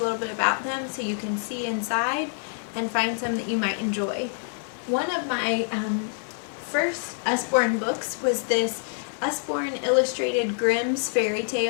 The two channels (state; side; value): silent; right; 55 dB below the other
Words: a little bit about them so you can see inside and find some that you might enjoy. One of my first Usborne books was this Usborne Illustrated Grimm's Fairy